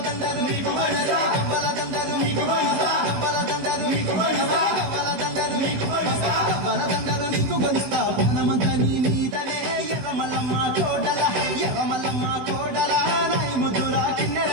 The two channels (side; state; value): left; late; 16 ms